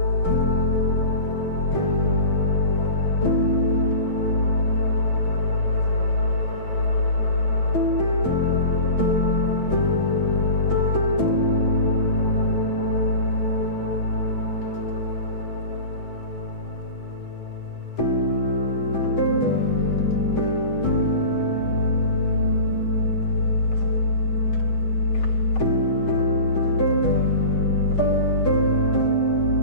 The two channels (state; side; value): late; right; 7.1 ms